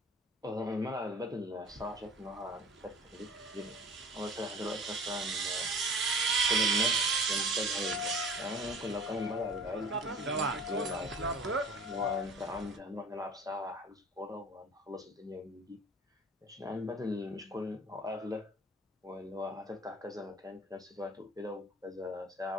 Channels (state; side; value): normal; both; correlation 0.43